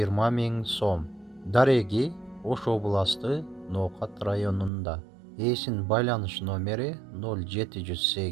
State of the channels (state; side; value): drops out; left; at 4.7 s